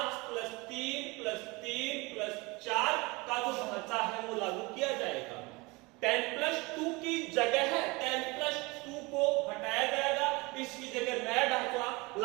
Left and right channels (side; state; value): left; quieter; 25.0 dB